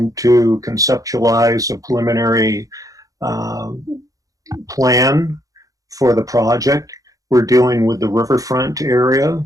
to conceptualize a preliminary plan for the project. We're dealing with the riverfront area,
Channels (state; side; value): late; left; 0.17 ms